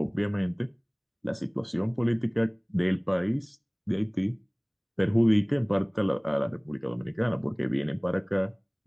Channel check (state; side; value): identical; both; correlation 1.00